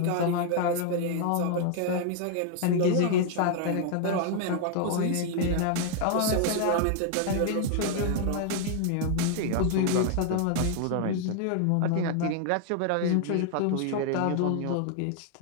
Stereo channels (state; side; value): different; both; correlation 0.00